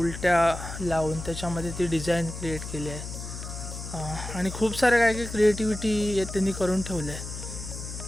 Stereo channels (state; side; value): noise; left; hum, 9 dB below the sound